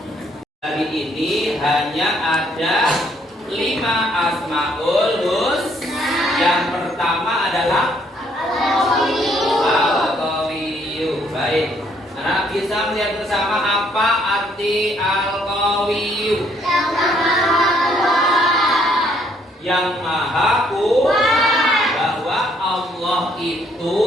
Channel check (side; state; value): both; normal; correlation 0.67